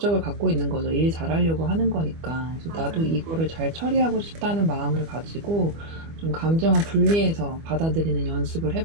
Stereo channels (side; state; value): left; late; 25 ms